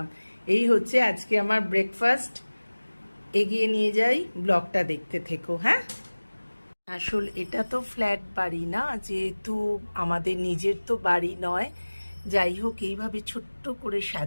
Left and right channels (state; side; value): inverted; both; correlation -1.00